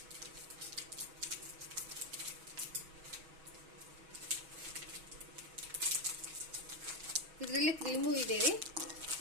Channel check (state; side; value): late; left; 6.2 ms